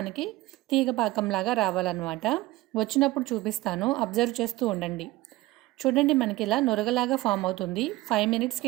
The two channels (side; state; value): left; quieter; 18.4 dB